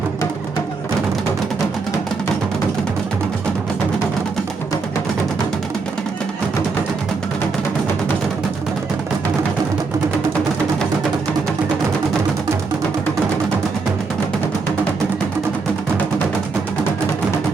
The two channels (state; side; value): quieter; left; 4.5 dB